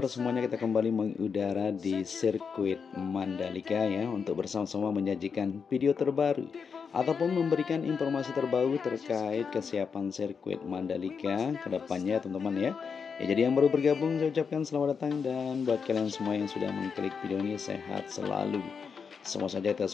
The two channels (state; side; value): quieter; right; 6.0 dB